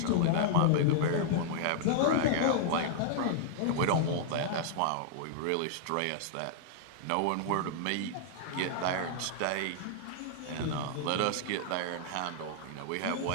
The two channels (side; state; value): both; different; correlation -0.01